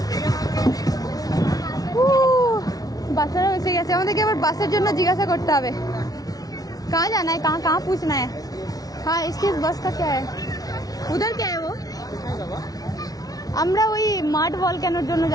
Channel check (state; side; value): late; right; 0.18 ms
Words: বাচ্চারা এসে গেছে, আমাদেরকে আবার বাসের জন্য জিজ্ঞাসা করতে হবে कहाँ जाना है, कहाँ कहाँ पूछना है। हाँ इसकी बस का क्या है, उधर क्या है वो। আমরা ওই মাড ভলক্যানোর জন্য